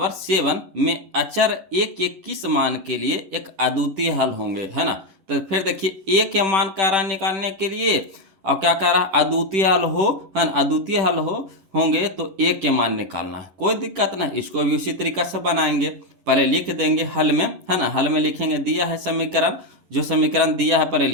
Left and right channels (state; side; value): late; left; 10 ms